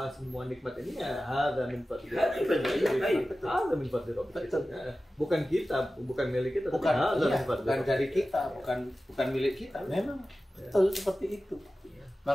semua nikmat ini ya hadza min fadli rabbik. Hadza min fadli rabbik. Bukan kita, bukan milik kita, Bukan, hadza iya, min fadli bukan rabbik. dari kita, bukan milik kita. Memang betul seperti itu.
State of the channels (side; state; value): both; normal; correlation 0.95